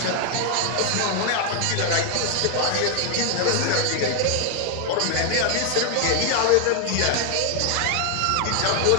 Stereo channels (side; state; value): both; different; correlation 0.00